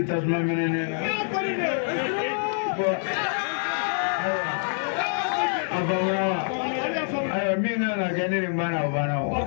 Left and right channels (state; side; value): silent; right; digital silence